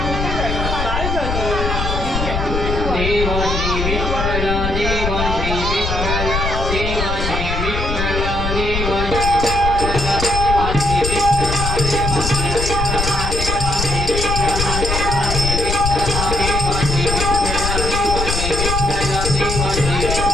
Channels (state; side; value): noise; left; rumble, 3 dB below the sound